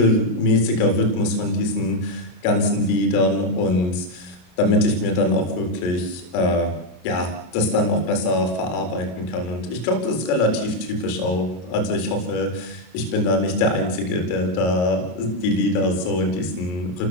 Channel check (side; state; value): right; late; 33 ms